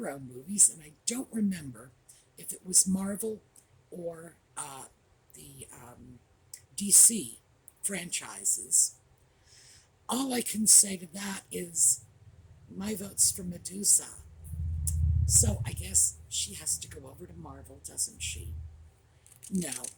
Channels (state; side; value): identical; both; correlation 1.00